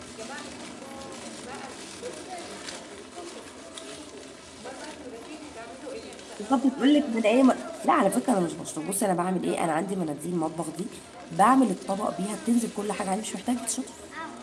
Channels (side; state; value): both; identical; correlation 1.00